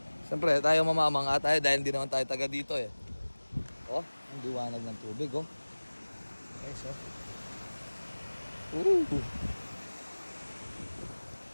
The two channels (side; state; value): both; inverted; correlation -1.00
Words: Siyempre, tayo mamamanga tayo dahil hindi naman tayo taga dito eh. Oh, ang liwanag ng tubig oh. Okay, so.